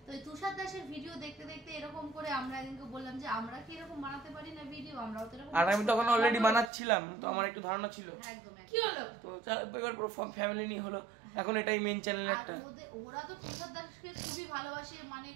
তো এই তুষার দাসের ভিডিও দেখতে দেখতে এরকম করে আমরা একদিনকে বললাম যে আমরা কি এরকম বানাতে পারি না ভিডিও, আমরাও তো এরকম। আর আমি তখন অলরেডি বানাচ্ছিলাম, তো আমার একটু ধারণা ছিল। একদম কি হলো, তো এবার পুরো ফ্যামিলি নিয়ে হলো, এখন এটাই মেইন চ্যানেল একটা। ওরা তো তুষার দাসকে খুবই ভালোবাসে, মানে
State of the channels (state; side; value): drops out; left; at 6.7 s